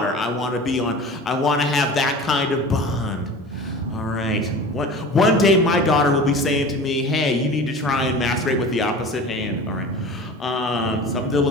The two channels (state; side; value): normal; both; correlation 0.37